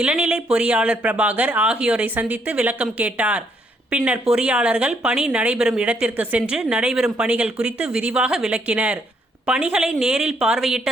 இளநிலை பொறியாளர் பிரபாகர் ஆகியோரை சந்தித்து விளக்கம் கேட்டார். பின்னர் பொறியாளர்கள் பணி நடைபெறும் இடத்திற்கு சென்று நடைபெறும் பணிகள் குறித்து விரிவாக விளக்கினர். பணிகளை நேரில் பார்வையிட்ட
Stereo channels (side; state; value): both; normal; correlation 0.71